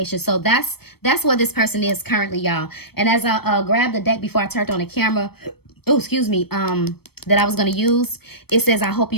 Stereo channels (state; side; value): late; right; 0.96 ms